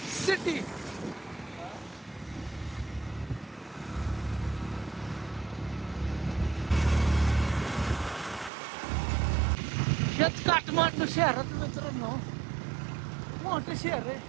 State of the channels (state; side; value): drops out; left; at 8.5 s